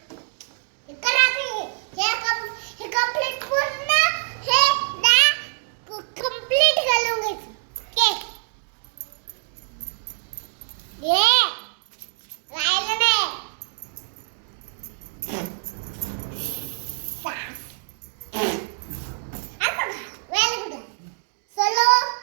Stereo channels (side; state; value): left; silent; digital silence